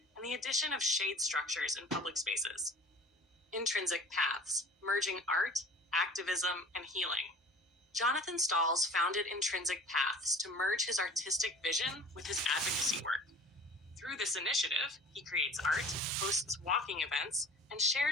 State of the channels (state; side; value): normal; both; correlation 0.45